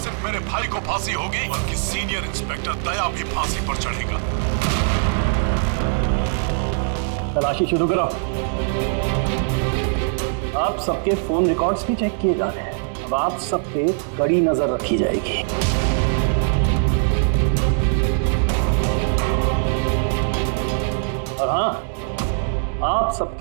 सिर्फ मेरे भाई को फांसी होगी बल्कि सीनियर इंस्पेक्टर दया भी फांसी पर चढ़ेगा। तलाशी शुरू करो। आप सबके फोन रिकॉर्ड्स भी चेक किए जा रहे हैं। अब आप सब पे कड़ी नजर रखी जाएगी। और हाँ, आप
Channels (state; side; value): silent; left; 65 dB below the other